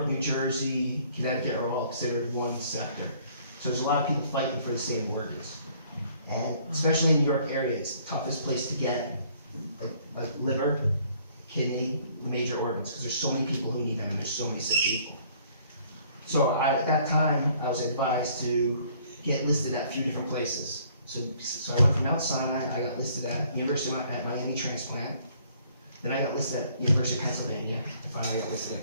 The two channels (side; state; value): both; inverted; correlation -0.60